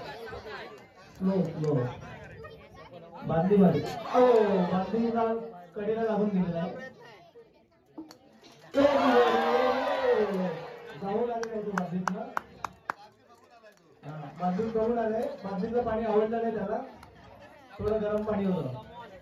स्लो स्लो बादली मध्ये बादलीला कडेला लागून गेलेला आहे जाऊ लागले तो बादलीतला बादलीत करून आलंय बादलीतलं पाणी आवडलं नाही त्याला थोडं गरम पाणी होतं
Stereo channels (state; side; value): identical; both; correlation 1.00